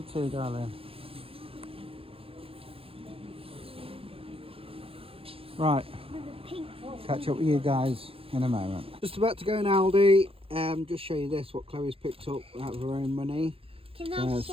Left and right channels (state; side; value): late; left; 0.27 ms